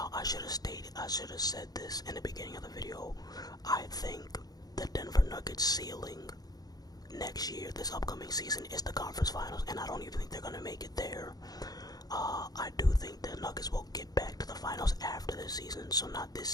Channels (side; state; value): right; late; 0.19 ms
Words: I should have said this in the beginning of the video. I think the Denver Nuggets ceiling next year, this upcoming season, is the conference finals, and I don't even think they're going to make it there. I do think the Nuggets will get back to the finals after this season, so not this